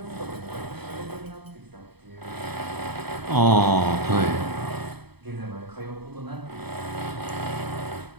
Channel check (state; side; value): late; left; 0.98 ms